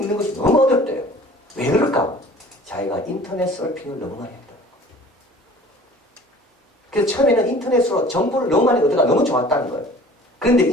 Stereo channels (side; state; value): both; normal; correlation 0.47